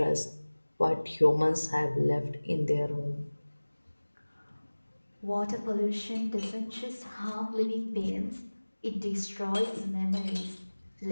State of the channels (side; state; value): both; inverted; correlation -1.00